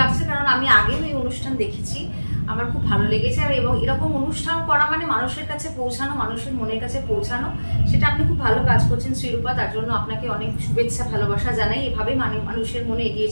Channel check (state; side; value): inverted; both; correlation -1.00